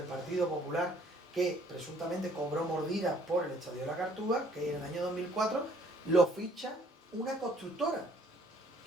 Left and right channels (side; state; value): both; normal; correlation 0.61